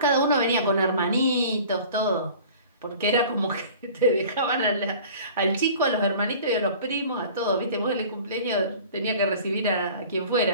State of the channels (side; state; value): both; inverted; correlation -0.44